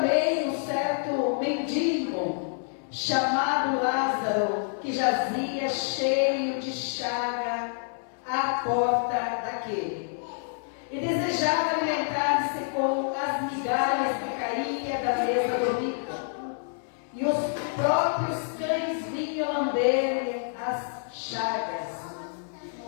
um certo mendigo, chamado Lázaro, que jazia cheio de chaga à porta daquele, e desejava alimentar-se com as migalhas que caíam da mesa do rico, e os próprios cães vinham lamber as chagas.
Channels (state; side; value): silent; right; digital silence